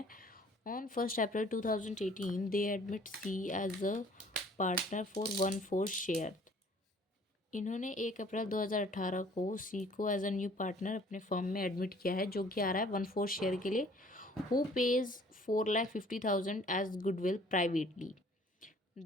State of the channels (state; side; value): normal; both; correlation 0.55